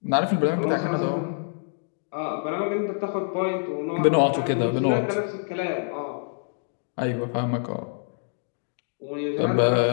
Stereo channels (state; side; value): silent; right; 60 dB below the other